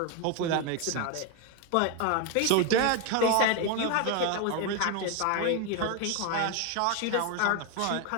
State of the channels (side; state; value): both; different; correlation 0.01